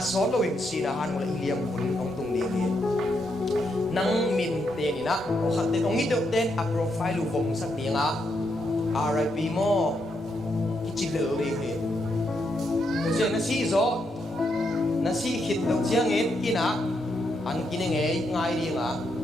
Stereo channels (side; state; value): both; normal; correlation 0.79